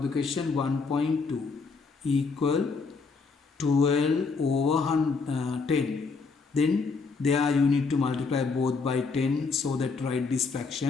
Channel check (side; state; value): right; quieter; 4.5 dB